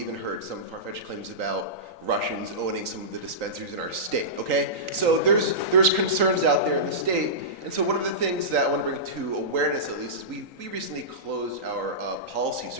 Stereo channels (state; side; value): late; left; 3.9 ms